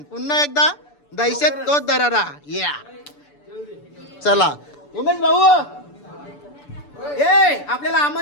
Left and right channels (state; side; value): late; right; 6.9 ms